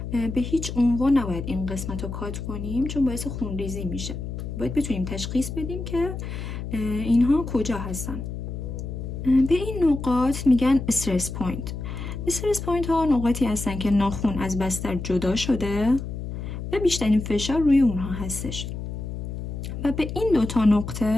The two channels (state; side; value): noise; left; hum, 6 dB below the sound